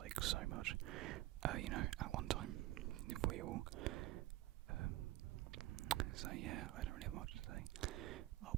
so much, at one time, if we all, so yeah, I don't really have much to say.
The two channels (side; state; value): left; quieter; 16.3 dB